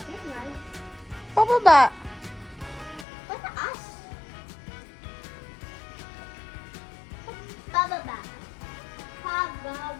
Pababa. Pataas. Pababa.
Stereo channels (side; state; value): right; drops out; at 3.1 s